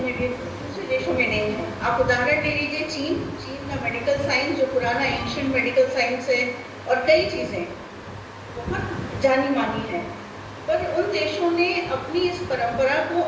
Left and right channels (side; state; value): both; identical; correlation 1.00